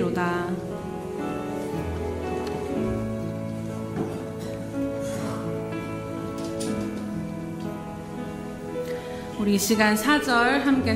우리 이 시간 4절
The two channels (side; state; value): both; identical; correlation 1.00